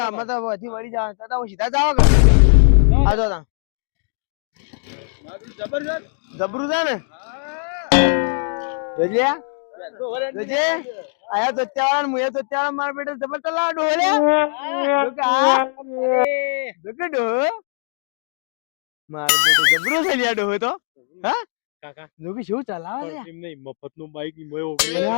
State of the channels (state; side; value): silent; right; digital silence